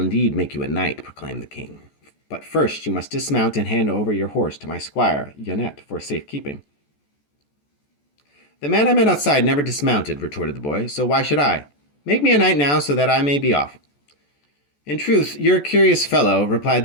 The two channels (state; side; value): late; right; 14 ms